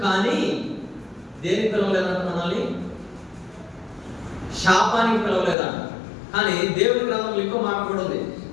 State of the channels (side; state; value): right; drops out; at 5.6 s